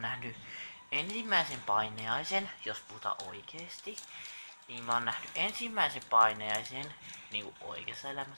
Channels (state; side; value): inverted; both; correlation -1.00